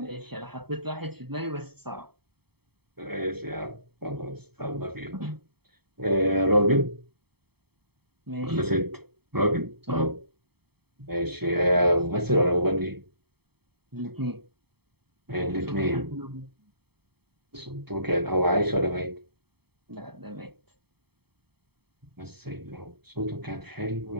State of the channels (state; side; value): late; left; 0.97 ms